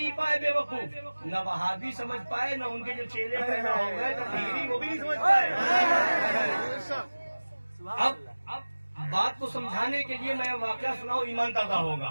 پائے بے وقوف، نہ وہابی سمجھ پائے، نہ ان کے جو چیلے پیدا ہو گئے تقریری وہ بھی نہیں سمجھ پائے۔ اب بات کو سمجھانے کے لیے میں واقعہ سناؤں، ایمان تازہ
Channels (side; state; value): both; inverted; correlation -1.00